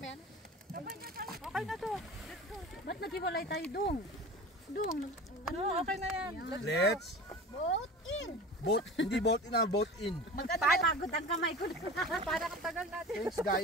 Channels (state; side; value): normal; both; correlation 0.36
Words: Okay na to. Ba't naghiwalay tayo dong? Dong, Ano, okay na yan. Let's boat in. boat, hindi boat in, boat in. Pagod ang kamay ko. Parang ang tagal natin. Thanks